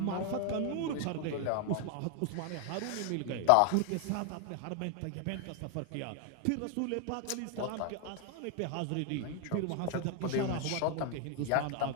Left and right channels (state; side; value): different; both; correlation 0.00